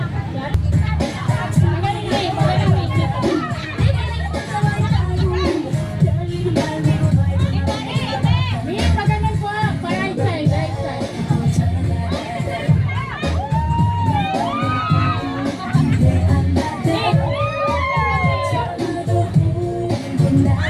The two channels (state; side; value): identical; both; correlation 1.00